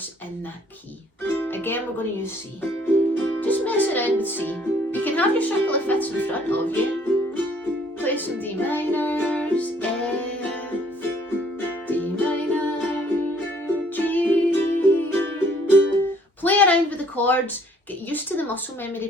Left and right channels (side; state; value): both; normal; correlation 0.61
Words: in that key. Again, we're going to use C. Just mess around with C. You can have your circle of fifths in front of you. Play some D minors, F, D minor, G. Play around with the chords, get used to the muscle memory